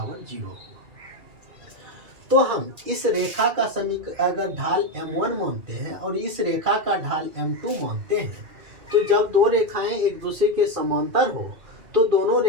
0 होगा। तो हम इस रेखा का अगर ढाल m1 मानते हैं और इस रेखा का ढाल m2 मानते हैं, तो जब दो रेखाएं एक दूसरे के समांतर हो तो दोनों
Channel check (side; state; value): left; late; 2.3 ms